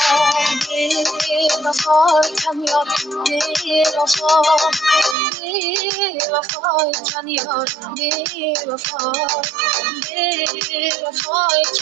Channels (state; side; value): drops out; left; at 5.2 s